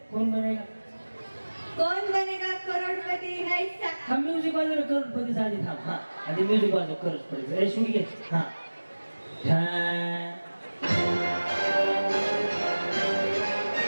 कोण बनेगा? कौन बनेगा करोडपती करोडपती हैसा. हा म्युझिक वाजव करोडपती झाली थांब हा आणि म्युझिक वाजव करोडपती ए शुनी घे हा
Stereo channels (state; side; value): inverted; both; correlation -1.00